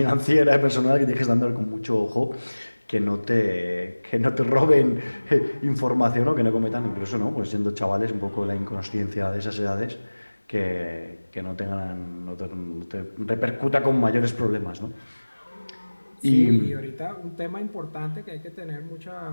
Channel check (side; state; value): both; inverted; correlation -1.00